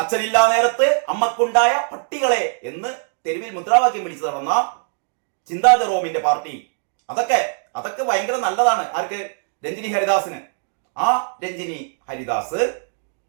അച്ഛനില്ലാ നേരത്ത് അമ്മക്കുണ്ടായ പട്ടികളെ എന്ന് തെരുവിൽ മുദ്രാവാക്യം വിളിച്ചു നടന്ന ചിന്താ ജെറോമിന്റെ പാർട്ടി. അതൊക്കെ ഭയങ്കര നല്ലതാണ്. ആർക്ക്? രഞ്ജിനി ഹരിദാസിന്. ആ രഞ്ജിനി ഹരിദാസ്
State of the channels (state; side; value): silent; left; 60 dB below the other